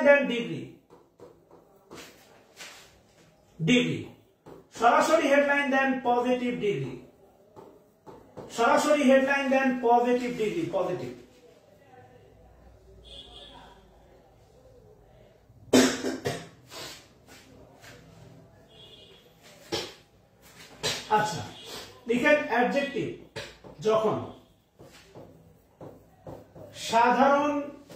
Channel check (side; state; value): both; identical; correlation 1.00